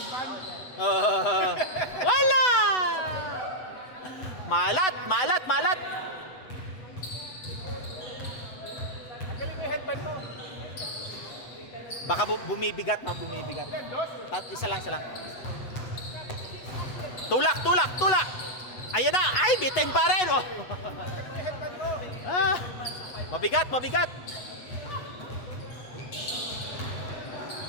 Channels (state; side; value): late; right; 8.0 ms